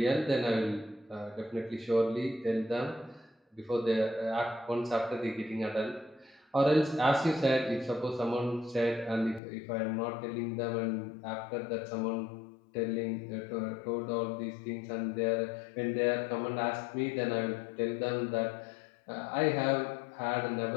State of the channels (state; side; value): drops out; right; at 9.4 s